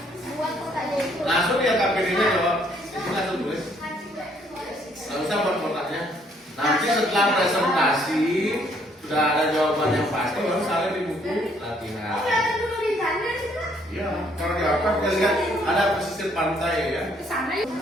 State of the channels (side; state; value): both; normal; correlation 0.66